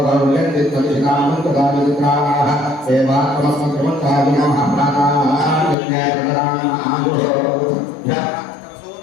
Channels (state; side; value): drops out; right; at 5.8 s